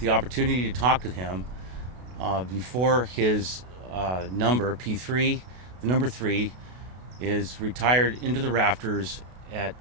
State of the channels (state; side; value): late; left; 32 ms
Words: opportunity to talk with him before his number, P3, the number 3, is retired into the rafters at